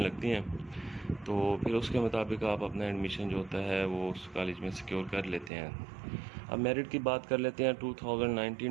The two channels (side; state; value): left; drops out; at 5.5 s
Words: हैं। तो फिर उसके मुताबिक आप अपना एडमिशन जो होता है वो उस कॉलेज में सिक्योर कर लेते हैं। अब मेरिट की बात कर लेते हैं।